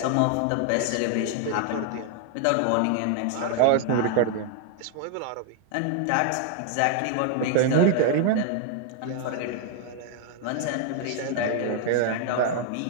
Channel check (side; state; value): both; different; correlation 0.00